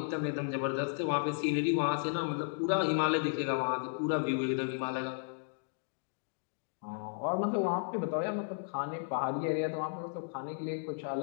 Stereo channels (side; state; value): right; silent; digital silence